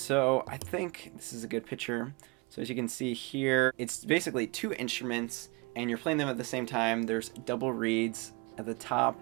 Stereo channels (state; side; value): quieter; left; 27.2 dB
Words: I think this is a good picture. So as you can see here, it's basically two instruments, and you're playing them at the same time. There's double reeds at the top.